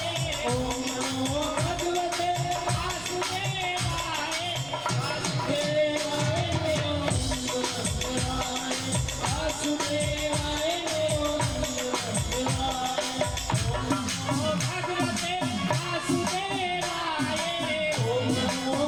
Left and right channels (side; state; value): right; noise; rumble, 18 dB below the sound